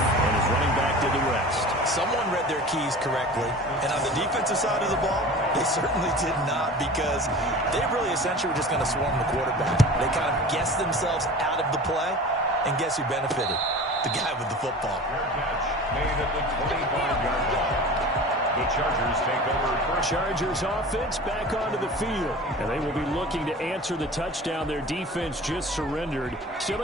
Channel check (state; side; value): normal; both; correlation 0.38